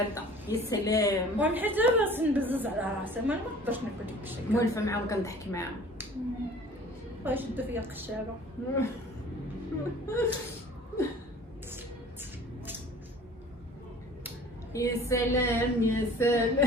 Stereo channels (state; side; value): normal; both; correlation 0.47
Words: يا سلام. وانا حيت باش نبزز على راسي ما نقدرش ناكل ديك الشيء. مولفه معاهم كنضحك معاهم. غيشدوا فيا القشابه. يا سلام يا